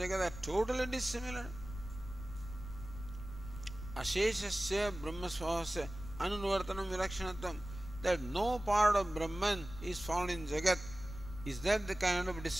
are totally dissimilar. Asheshasya Brahmasvahasya Anuvartanam Vilakshanatvam, that no part of Brahman is found in Jagat. Is that the kind of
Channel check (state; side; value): noise; left; rumble, 12 dB below the sound